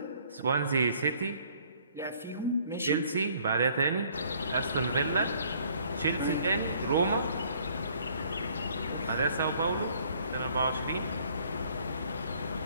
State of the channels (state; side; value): inverted; both; correlation -0.60